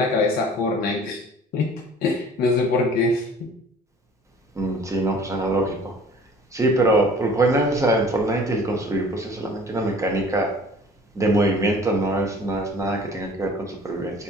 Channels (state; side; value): normal; both; correlation 0.48